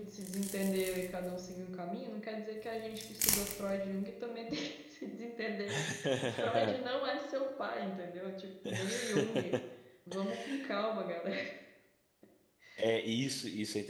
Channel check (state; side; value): identical; both; correlation 1.00